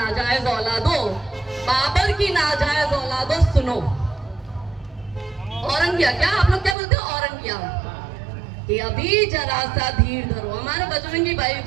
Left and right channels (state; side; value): drops out; left; at 6.8 s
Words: औलादो, बाबर की नाजायज औलादो, सुनो। औरंगिया क्या आप लोग क्या बोलते हो? औरंगिया कि अभी जरा सा धीर धरो। हमारे बजरंगी